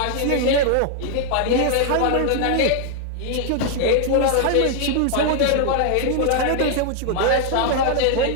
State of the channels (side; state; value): both; different; correlation 0.00